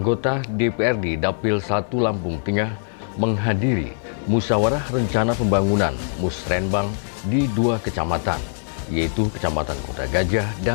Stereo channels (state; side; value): silent; right; 64 dB below the other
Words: DPRD Dapil 1 Lampung Tengah menghadiri musyawarah rencana pembangunan Musrenbang di 2 kecamatan, yaitu Kecamatan Kota Gajah